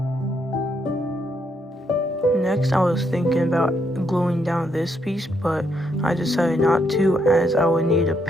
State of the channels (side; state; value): both; normal; correlation 0.76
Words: Next, I was thinking about gluing down this piece, but I decided not to, as I would need to